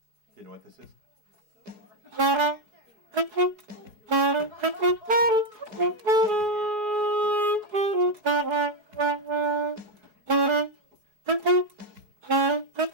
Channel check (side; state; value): left; late; 4.7 ms